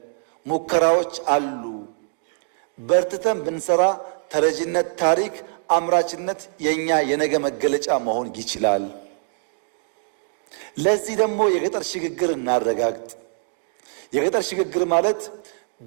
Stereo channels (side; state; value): left; silent; digital silence